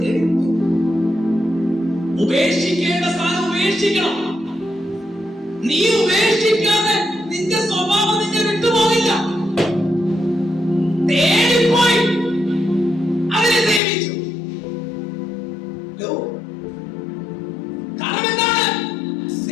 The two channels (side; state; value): right; drops out; at 13.8 s